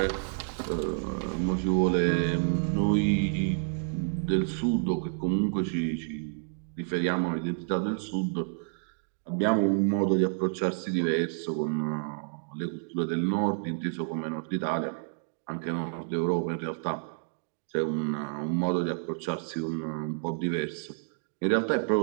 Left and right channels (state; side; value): silent; left; digital silence